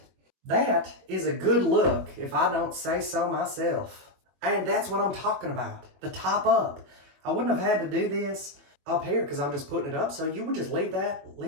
That is a good look, if I don't say so myself. And that's what I'm talking about. The top up. I wouldn't have had to do this up here because I'm just putting it up. So you would just leave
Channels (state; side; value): late; left; 21 ms